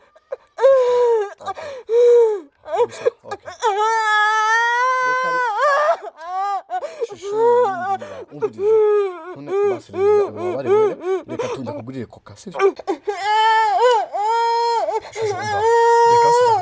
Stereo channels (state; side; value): identical; both; correlation 1.00